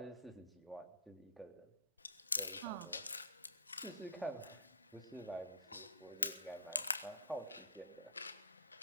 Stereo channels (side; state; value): both; inverted; correlation -0.40